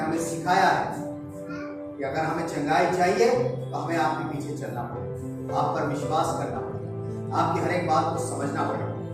हमें सिखाया है कि अगर हमें चंगाई चाहिए तो हमें आपके पीछे चलना पड़ेगा, आप पर विश्वास करना पड़ेगा, आपकी हर एक बात को समझना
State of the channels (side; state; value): both; identical; correlation 1.00